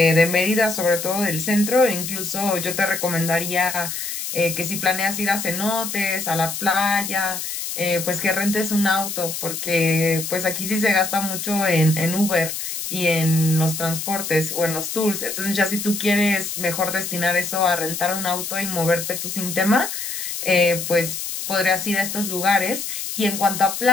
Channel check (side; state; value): left; noise; hiss, 5 dB below the sound